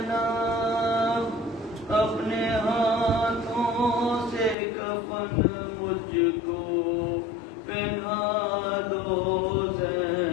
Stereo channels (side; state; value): right; drops out; at 4.5 s